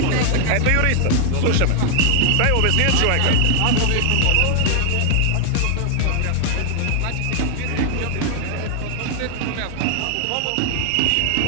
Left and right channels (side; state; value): both; different; correlation 0.00